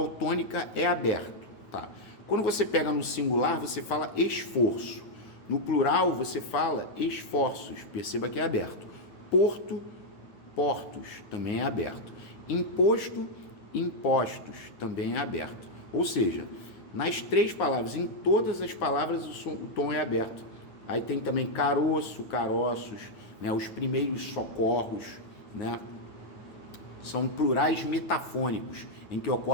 tônica é aberto. Tá? Quando você pega no singular, você fala esforço. No plural, você fala esforços. Perceba que é aberto. Porto, portos, também é aberto. Imposto, impostos, também é aberto. Ou seja, nas três palavras, em todas as palavras, o tom é aberto. Aí tem também caroço, caroços, né? Os primeiros socorros, né? São plurais metafônicos, em que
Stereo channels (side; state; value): right; late; 9.6 ms